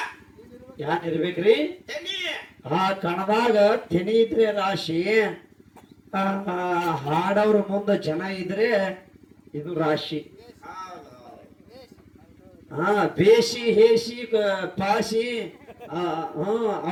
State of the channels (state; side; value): identical; both; correlation 1.00